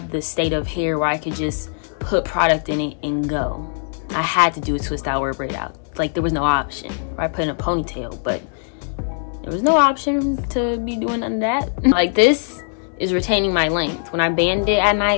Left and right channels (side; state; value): right; silent; digital silence